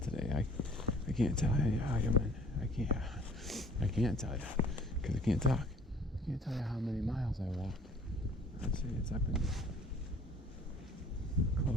today. I can't tell you how I can't tell you because I can't talk. I can't tell you how many miles I walked. I'd say it's up in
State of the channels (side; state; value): both; normal; correlation 0.53